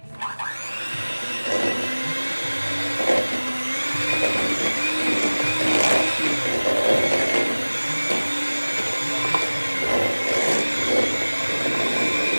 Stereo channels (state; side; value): inverted; both; correlation -1.00